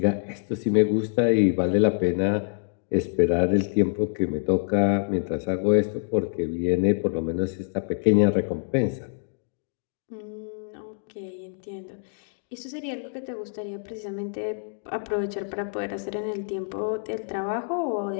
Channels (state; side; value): silent; right; digital silence